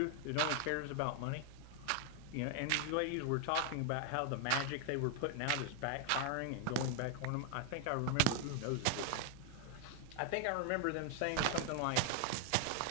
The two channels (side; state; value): both; different; correlation 0.00